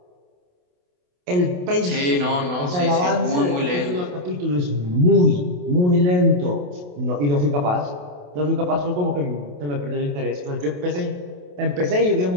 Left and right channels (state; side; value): late; left; 28 ms